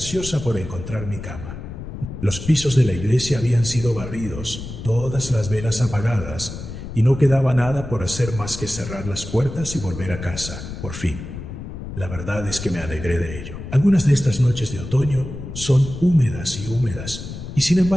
por encontrar mi cama. Los pisos de la iglesia habían sido barridos, todas las velas apagadas, y no quedaba nada por hacer más que cerrar las puertas y volver a casa, por fin. La verdad es que me alegré de ello. Algunas de estas noches de otoño son húmedas y húmedas, y sin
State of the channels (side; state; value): left; noise; rumble, 10 dB below the sound